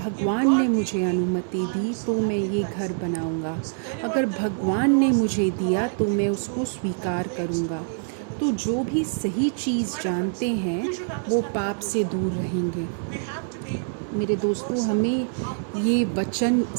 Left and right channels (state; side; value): silent; left; digital silence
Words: ने मुझे अनुमति दी तो मैं ये घर बनाऊंगा। अगर भगवान ने मुझे दिया तो मैं उसको स्वीकार करूंगा। तो जो भी सही चीज़ जानते हैं वो पाप से दूर रहेंगे। मेरे दोस्तों, हमें ये वचन